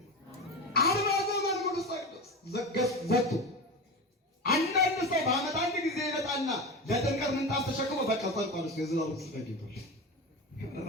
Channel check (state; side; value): normal; both; correlation 0.25